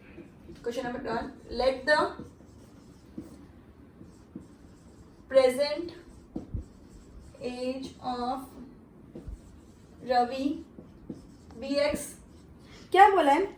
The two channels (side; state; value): both; identical; correlation 1.00